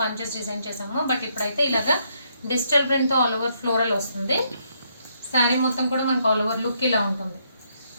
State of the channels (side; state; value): both; inverted; correlation -0.74